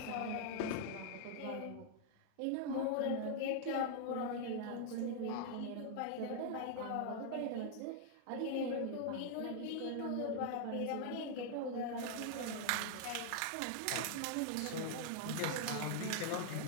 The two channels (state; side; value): different; both; correlation 0.00